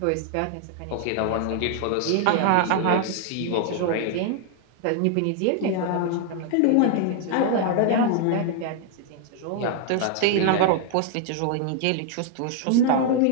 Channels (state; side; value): different; both; correlation 0.00